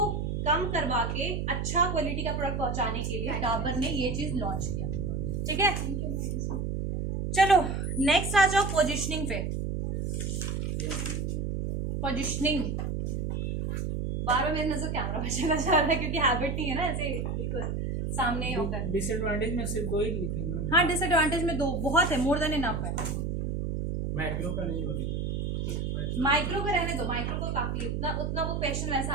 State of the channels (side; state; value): right; noise; hum, 1 dB below the sound